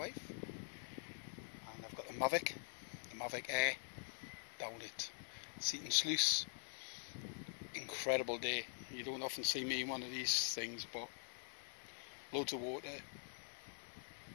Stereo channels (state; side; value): silent; right; digital silence